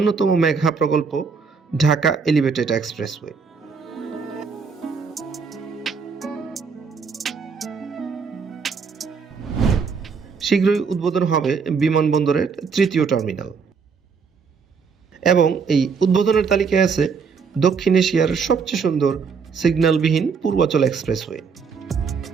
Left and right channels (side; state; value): left; quieter; 5.6 dB